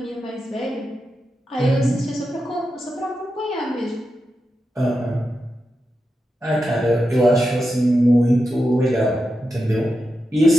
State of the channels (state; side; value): normal; both; correlation 0.89